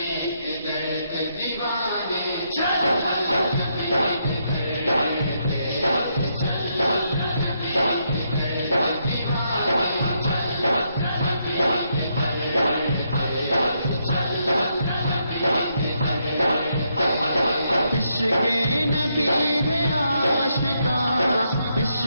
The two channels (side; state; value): both; inverted; correlation -0.78